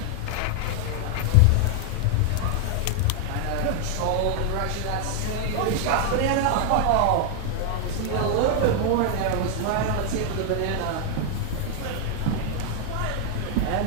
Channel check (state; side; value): different; both; correlation 0.00